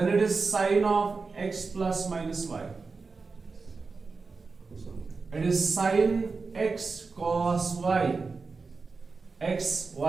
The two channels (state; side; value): quieter; left; 4.4 dB